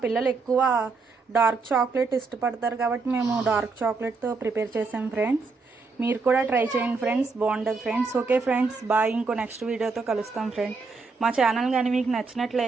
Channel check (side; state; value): left; quieter; 4.3 dB